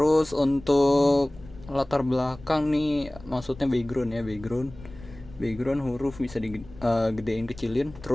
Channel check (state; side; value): noise; left; rumble, 19 dB below the sound